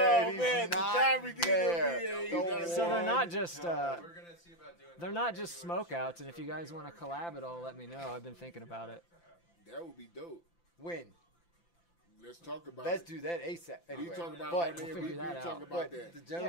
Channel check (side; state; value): right; late; 5.9 ms